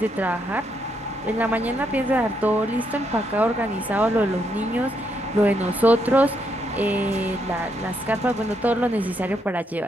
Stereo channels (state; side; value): normal; both; correlation 0.77